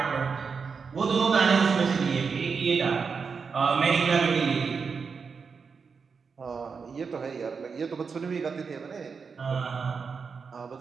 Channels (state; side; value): quieter; left; 5.5 dB